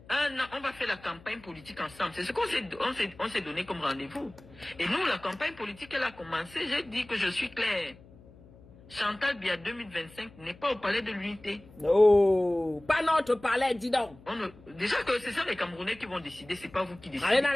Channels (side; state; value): left; noise; hum, 23 dB below the sound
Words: la campagne politique ensemble. C'est ce qu'on s'est donné comme rendez-vous. Et nous, la campagne politique, elle a commencé. J'ai dit que je suis clair. Chantal Biya 2025 n'est pas au palais de l'unité. Non, pas notre palais, dis donc. Déjà que ce sont les Camerounais qui vont décider, c'est pas vous qui décidez. Allez dans